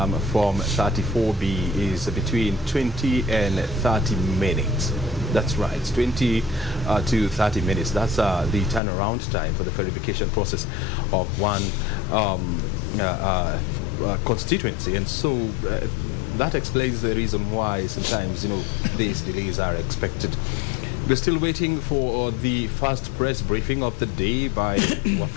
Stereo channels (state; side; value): drops out; right; at 8.8 s